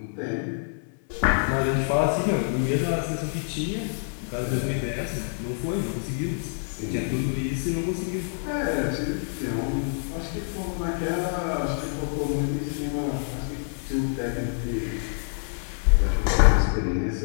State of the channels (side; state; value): right; silent; 61 dB below the other